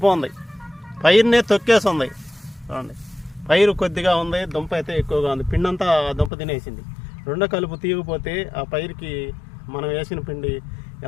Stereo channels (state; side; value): drops out; right; at 6.3 s